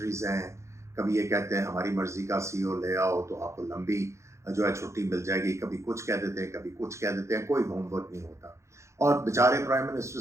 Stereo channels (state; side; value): late; left; 0.14 ms